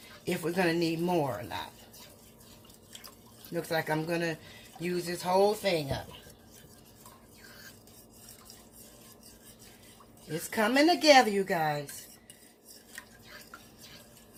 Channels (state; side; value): identical; both; correlation 1.00